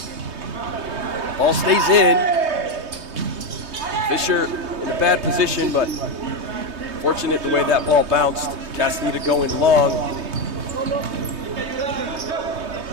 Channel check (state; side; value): late; left; 3.2 ms